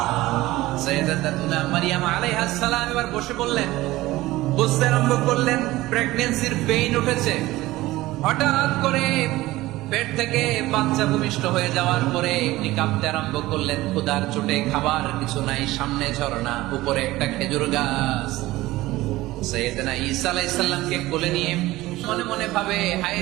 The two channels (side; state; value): left; quieter; 17.9 dB